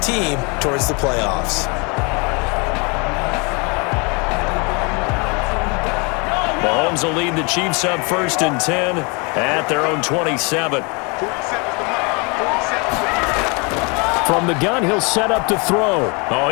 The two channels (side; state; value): right; quieter; 31.0 dB